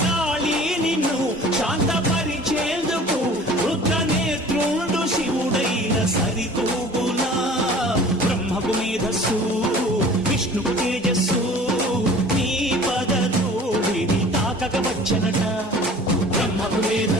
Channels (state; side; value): normal; both; correlation 0.45